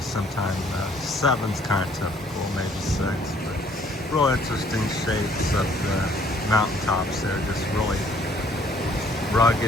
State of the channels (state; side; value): normal; both; correlation 0.61